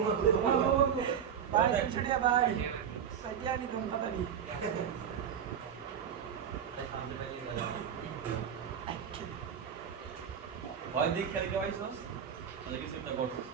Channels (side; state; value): left; quieter; 8.2 dB